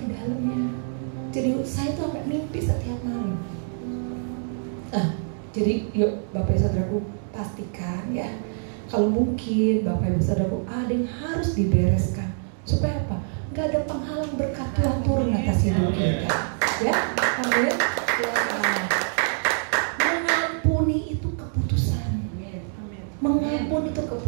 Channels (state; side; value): silent; left; digital silence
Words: dalamnya. Jadi saya tuh sampai mimpi setiap malam. Jadi yuk Bapak Ibu Saudaraku pastikan ya. Kalau mungkin Bapak Ibu Saudaraku ada yang harus dibereskan. Supaya apa? Gak ada penghalang berkat Tuhan turun atas hidup kita. Ya, amin. Ya. Mengampuni itu keputusan. Mengampuni itu